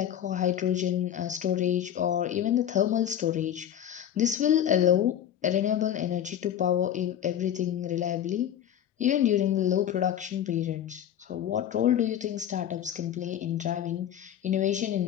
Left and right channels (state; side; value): quieter; right; 10.3 dB